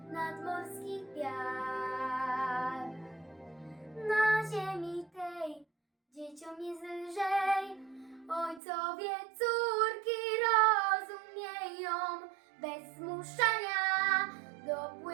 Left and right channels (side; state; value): left; drops out; at 8.6 s